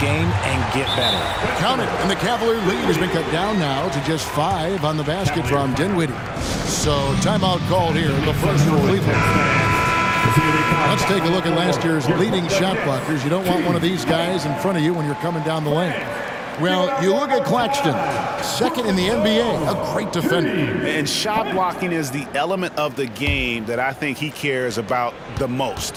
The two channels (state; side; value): identical; both; correlation 1.00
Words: and get better. Count it, and the Cavalier lead has been cut down now to just 5 on the basket from Dinwiddie. So timeout called here, the first for Cleveland. Let's take a look at last year's leading shot blockers. You don't want one of these guys in front of you when you're coming down the lane. Well, you look at Claxton, 2nd in the NBA, a great defender. And shot blocking is the element of the game that I think he cares about the